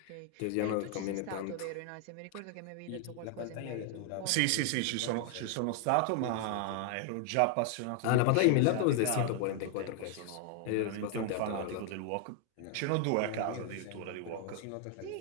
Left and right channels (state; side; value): different; both; correlation 0.00